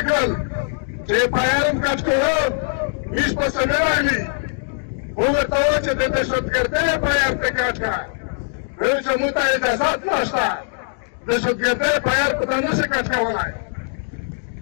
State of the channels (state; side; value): silent; right; digital silence